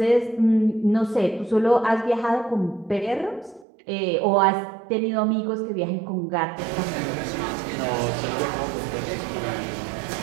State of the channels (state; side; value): drops out; left; at 3.7 s